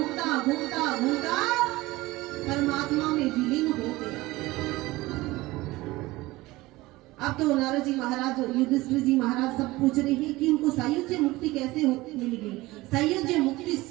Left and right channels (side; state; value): left; quieter; 19.6 dB